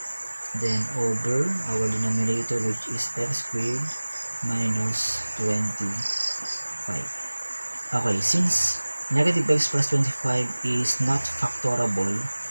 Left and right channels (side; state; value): both; inverted; correlation -1.00